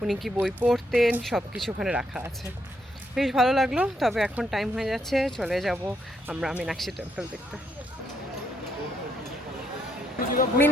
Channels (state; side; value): normal; both; correlation 0.76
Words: উনি কি বই পড়তেন, সব কিছু ওখানে রাখা আছে। বেশ ভালো লাগলো। তবে এখন টাইম হয়ে যাচ্ছে, চলে যাব আমরা মীনাক্ষী টেম্পল দেখতে।